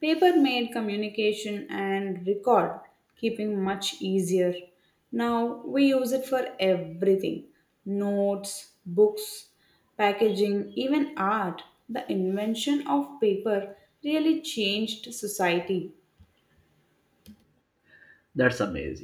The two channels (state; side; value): identical; both; correlation 1.00